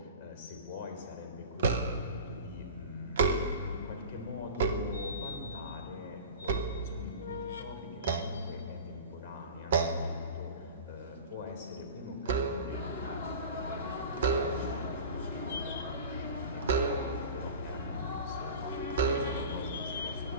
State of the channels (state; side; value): inverted; both; correlation -0.36